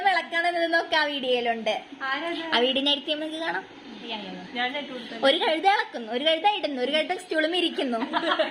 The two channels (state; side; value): identical; both; correlation 1.00